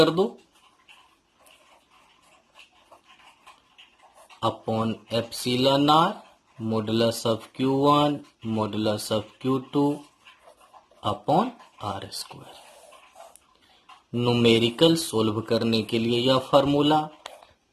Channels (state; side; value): identical; both; correlation 1.00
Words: दो upon epsilon R modulus of Q1 modulus of Q2 upon R square. Numerical solve करने के लिए यह formula,